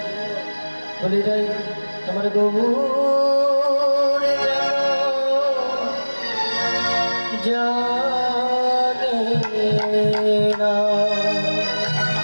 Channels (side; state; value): both; inverted; correlation -1.00